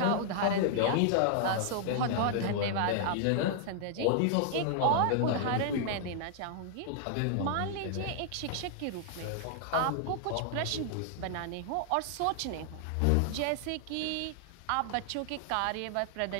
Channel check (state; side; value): different; both; correlation -0.01